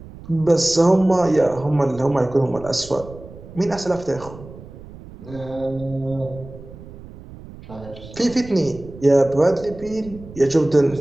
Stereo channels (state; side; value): noise; right; rumble, 17 dB below the sound